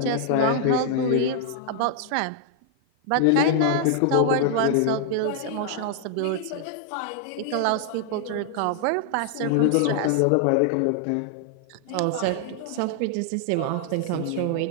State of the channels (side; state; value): both; different; correlation 0.00